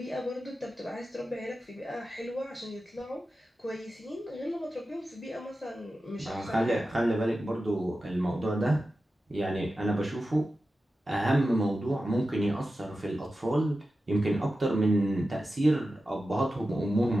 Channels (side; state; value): both; normal; correlation 0.93